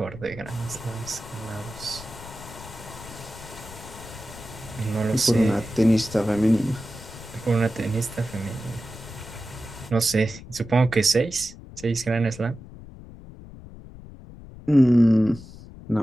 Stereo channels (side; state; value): left; noise; rumble, 16 dB below the sound